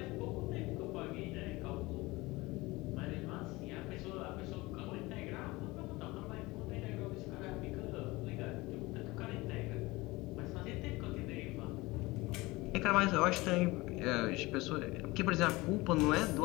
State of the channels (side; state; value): right; quieter; 21.6 dB